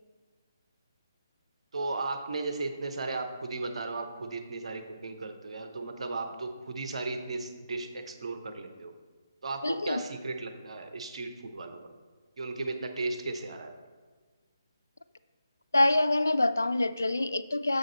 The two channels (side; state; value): both; inverted; correlation -0.89